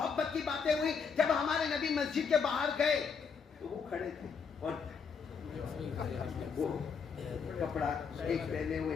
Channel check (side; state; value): right; quieter; 5.9 dB